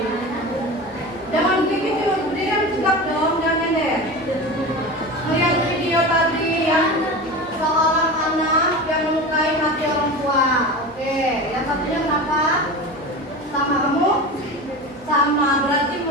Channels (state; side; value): noise; right; hum, 27 dB below the sound